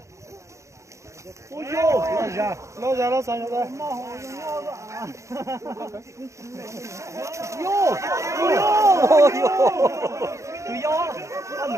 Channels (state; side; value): late; left; 0.15 ms